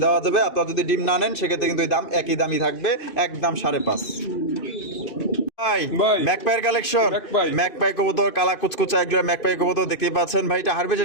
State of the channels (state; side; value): late; right; 2.5 ms